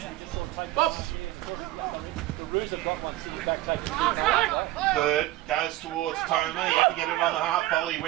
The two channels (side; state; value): left; quieter; 16.2 dB